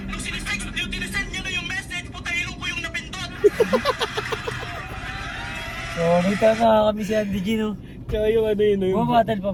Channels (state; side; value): identical; both; correlation 1.00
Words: Nung sinisend niya na yung message, puta ilong ko yung napindot. So, may tama kami si Andy G, no? Kaya yung ano yun, yung... Bumabattle pa